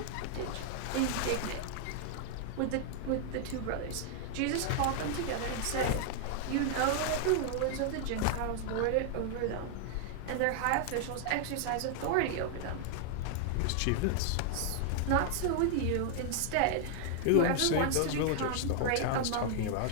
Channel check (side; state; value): both; different; correlation -0.01